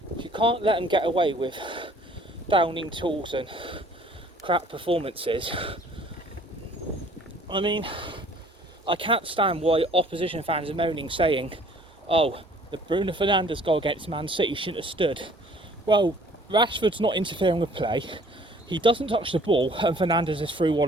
You can't let them get away with downing tools and crap performances. I mean, I can't stand why opposition fans are moaning, saying, oh, the Bruno Fernandes goal against Man City shouldn't have stood. Well, Rashford's not interfering with play, he doesn't touch the ball, and Fernandes is through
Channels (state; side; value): normal; both; correlation 0.55